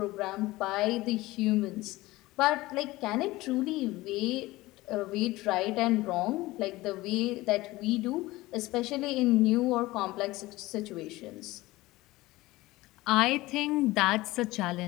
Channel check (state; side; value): quieter; right; 19.2 dB